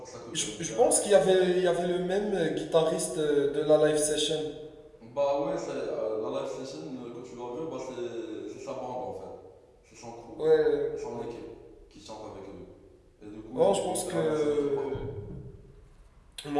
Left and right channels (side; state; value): both; identical; correlation 1.00